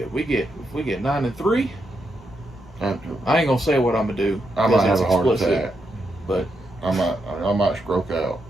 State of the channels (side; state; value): both; normal; correlation 0.82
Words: If we get 9-3, I ain't gonna say what I'm gonna do. I might have a heart attack. But I might stroke out.